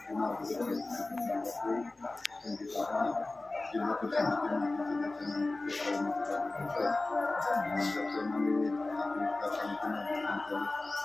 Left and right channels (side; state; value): right; quieter; 3.1 dB